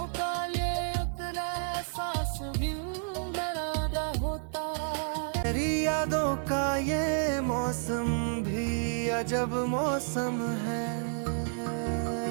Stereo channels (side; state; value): left; silent; 57 dB below the other